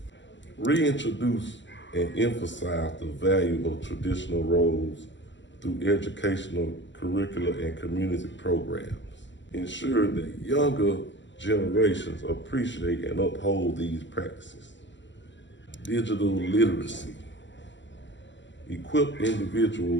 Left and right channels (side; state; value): right; late; 0.54 ms